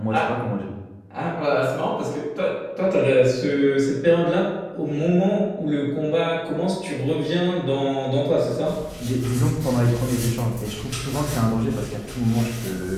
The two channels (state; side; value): identical; both; correlation 1.00